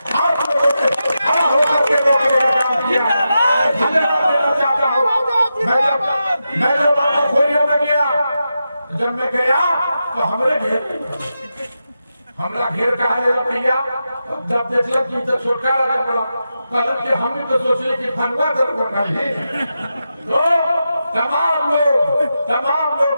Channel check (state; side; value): inverted; both; correlation -0.89